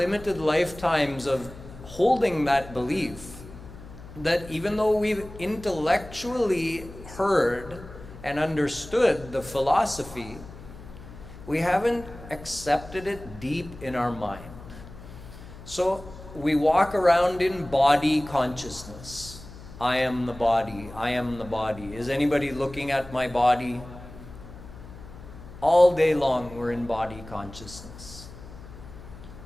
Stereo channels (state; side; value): noise; left; hum, 16 dB below the sound